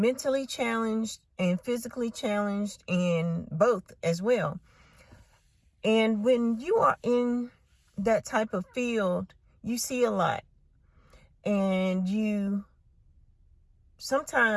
challenged and physically challenged, and both as well. And when you are in that type of field, you see a lot, and you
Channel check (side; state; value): both; identical; correlation 1.00